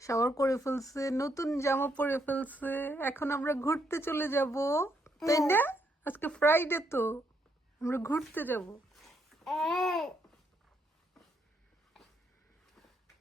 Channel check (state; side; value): normal; both; correlation 0.76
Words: শাওয়ার করে ফেলছে, নতুন জামা পরে ফেলছে, এখন আমরা ঘুরতে চলে যাব, তাই না? আজকে ফ্রাইডে তো আমরা ঘুরতে যাব।